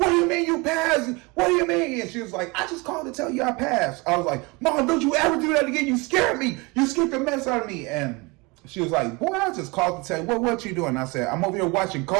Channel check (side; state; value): left; quieter; 25.8 dB